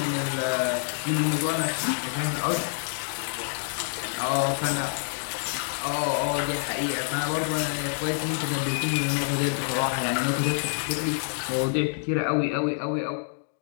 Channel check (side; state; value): right; silent; digital silence